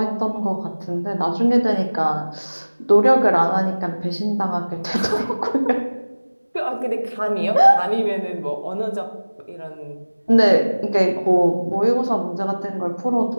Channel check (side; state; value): both; inverted; correlation -1.00